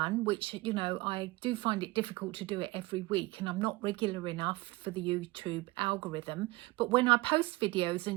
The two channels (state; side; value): quieter; left; 21.5 dB